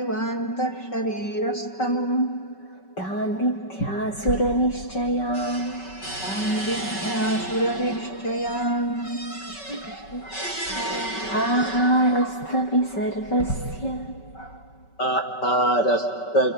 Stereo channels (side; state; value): right; late; 5.3 ms